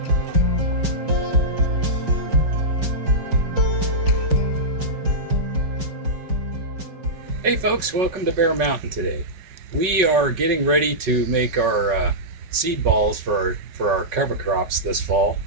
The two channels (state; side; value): late; left; 5.3 ms